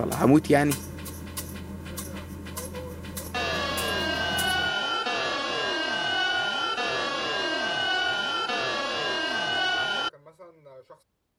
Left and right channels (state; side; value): identical; both; correlation 1.00